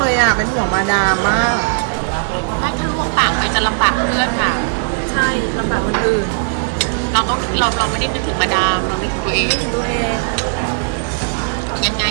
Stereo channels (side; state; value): left; silent; digital silence